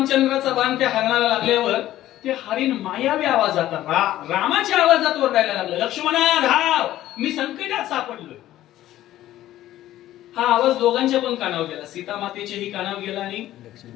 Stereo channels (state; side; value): quieter; right; 14.0 dB